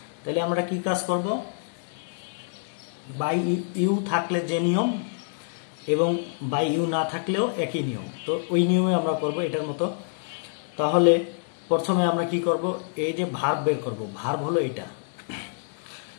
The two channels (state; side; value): silent; right; 61 dB below the other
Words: তাহলে আমরা কি কাজ করব, বাই ইউ থাকলে যে নিয়ম এবং বাই ইউ না থাকলেও একই নিয়ম, তো ওই নিয়মে আমরা করব এটার মতো। তাহলে প্রথমে আমরা কি করব, এই যে ভার্ব বের করব। ভার্ব হলো এটা,